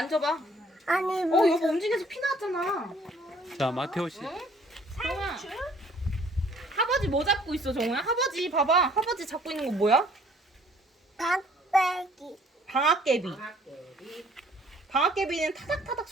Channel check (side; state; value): both; normal; correlation 0.58